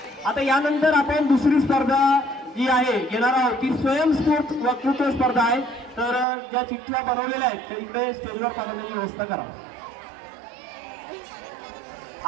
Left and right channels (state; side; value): drops out; left; at 6.2 s